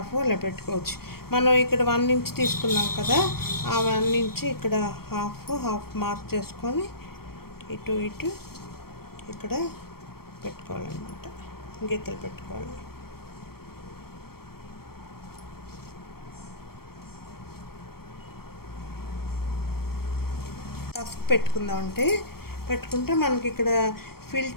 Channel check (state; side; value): late; right; 0.94 ms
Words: అలా పెట్టుకోవచ్చు. మనం ఇక్కడ 1 ఇంచ్ తీసుకున్నాం కదా, ఆ 1 ఇంచ్ ఇక్కడ హాఫ్ మార్క్ చేసుకొని ఇటు ఇక్కడ పెట్టుకోవాలన్నమాట, గీతలు పెట్టుకోవాలి. టఫ్ పెట్టుకుంటే మనకి ఇక్కడ